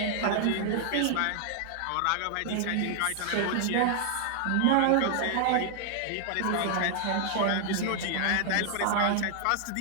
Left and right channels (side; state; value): both; different; correlation 0.00